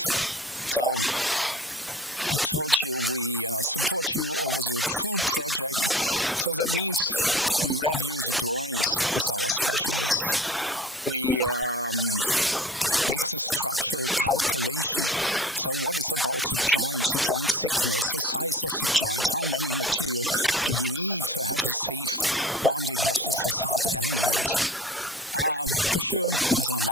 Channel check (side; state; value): both; normal; correlation 0.40